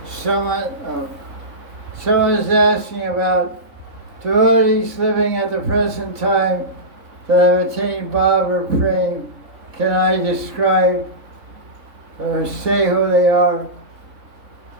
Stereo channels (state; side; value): late; left; 3.6 ms